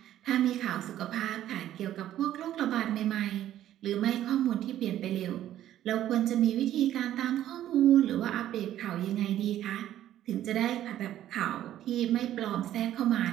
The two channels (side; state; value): left; quieter; 12.3 dB